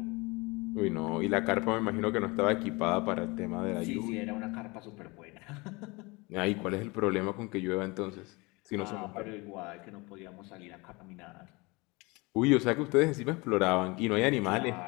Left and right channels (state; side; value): quieter; right; 25.6 dB